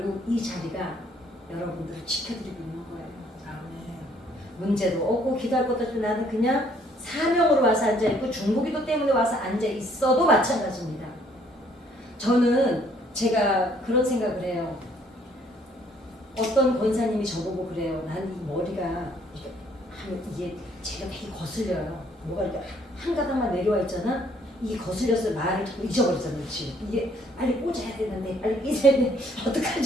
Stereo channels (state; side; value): normal; both; correlation 0.63